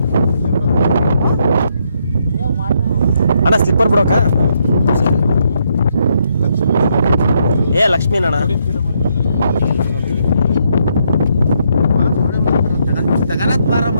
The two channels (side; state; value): both; inverted; correlation -0.75